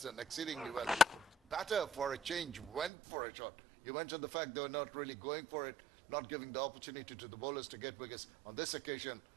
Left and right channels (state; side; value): drops out; left; at 2.9 s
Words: done exceedingly well. Batter for a change went for a shot. You mentioned the fact they were not really going for it, not giving the opportunity to the bowlers to get wickets. On this occasion,